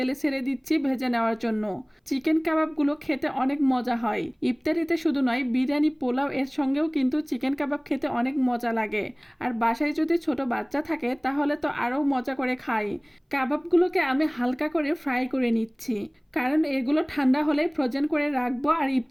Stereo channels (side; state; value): both; identical; correlation 1.00